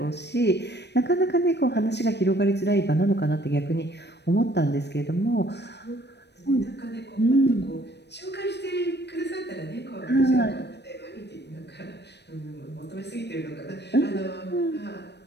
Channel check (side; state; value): right; late; 0.50 ms